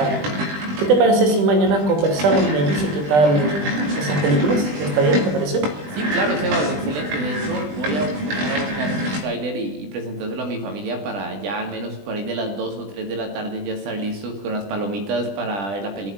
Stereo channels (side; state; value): left; late; 20 ms